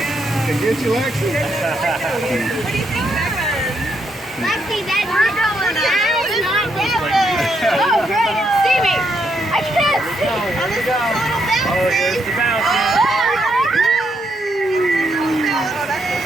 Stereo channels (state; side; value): normal; both; correlation 0.77